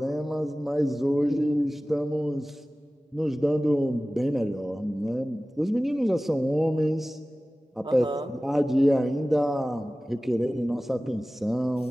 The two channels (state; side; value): normal; both; correlation 0.97